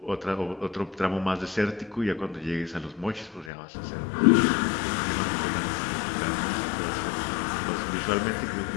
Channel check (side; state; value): right; drops out; at 3.5 s